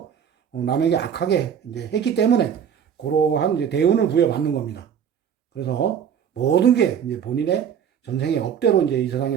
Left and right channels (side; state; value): left; quieter; 8.2 dB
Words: 남에게 악하게 이제 했기 때문에 그러한 이제 대운을 부여받는 겁니다. 그래서 모든 게 이제 본인의 전생의 업대로 이제 이 세상에